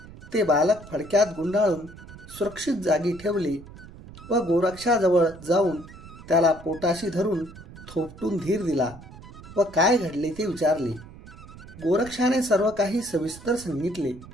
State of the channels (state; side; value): noise; right; rumble, 17 dB below the sound